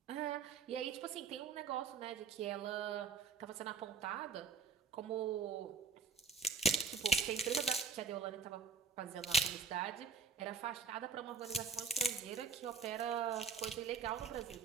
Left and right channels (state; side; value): quieter; left; 5.0 dB